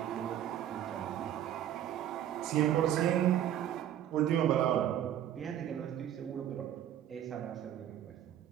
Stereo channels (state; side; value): quieter; left; 10.9 dB